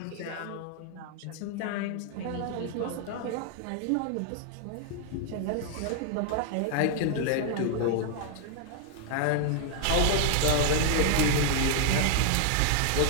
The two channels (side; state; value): both; different; correlation 0.00